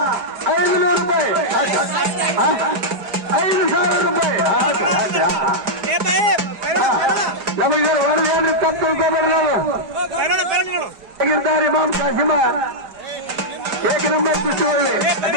ರೂಪಾಯಿ 5,000 ರೂಪಾಯಿ ನಮಗೆ ವರದಿ ಏನ್ರಿ ತಪ್ಪು ತಿಳ್ಕೊಬೇಡ್ರಿ ನಾವು ಆಗಿರ್ತಾರೆ ಇಮಾಮ್ ಕಾಸಿಮ ಏಕ ನಂಬರ್ ಕುಸ್ತಿ ಒಳ್ಳೆ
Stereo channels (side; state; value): left; late; 5.0 ms